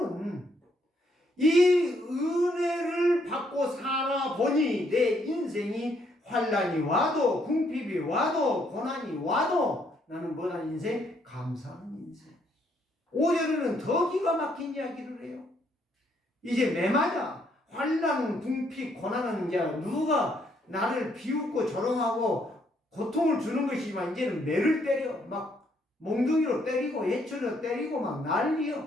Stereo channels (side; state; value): both; normal; correlation 0.71